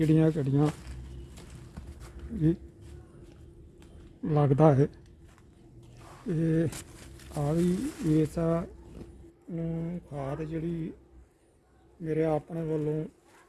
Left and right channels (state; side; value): identical; both; correlation 1.00